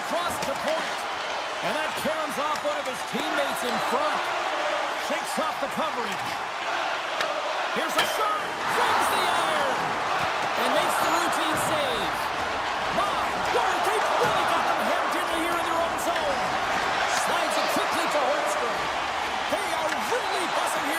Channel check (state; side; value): identical; both; correlation 1.00